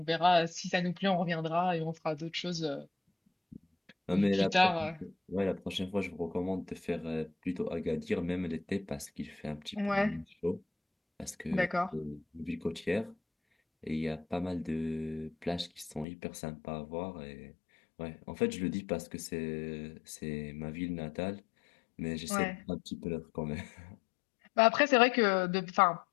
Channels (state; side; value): drops out; right; at 16.1 s